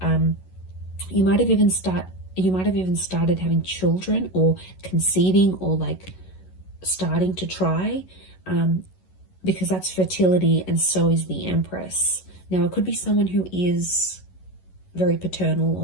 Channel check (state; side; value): late; right; 11 ms